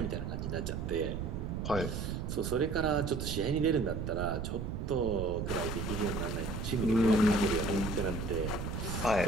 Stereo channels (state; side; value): noise; right; rumble, 4 dB below the sound